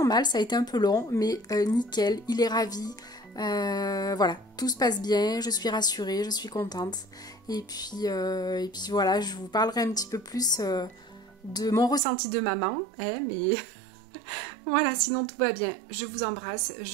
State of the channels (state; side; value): drops out; left; at 12.0 s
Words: mal, ça a été un peu long, mais nickel, il est ravi. Voilà, tout se passe bien, je suis rassurée, je suis contente. Et puis voilà, je vous parlerai un petit peu plus de mon ressenti de maman, hein, mais voilà, sinon tout va bien. Je vous embrasse,